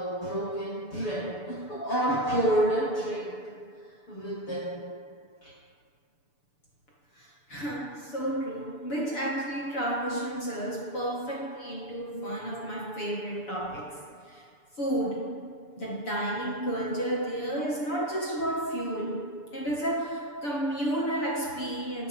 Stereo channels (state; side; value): late; right; 6.9 ms